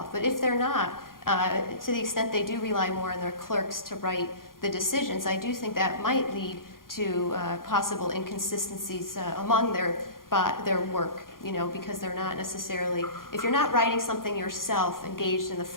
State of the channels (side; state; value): right; late; 0.91 ms